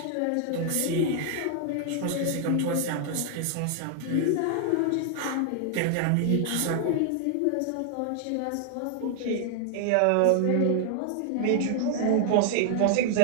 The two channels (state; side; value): different; both; correlation 0.00